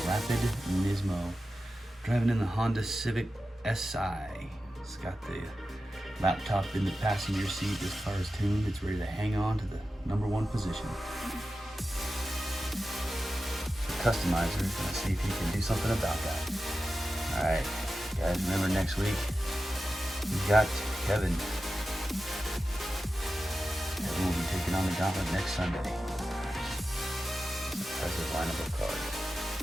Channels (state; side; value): normal; both; correlation 0.93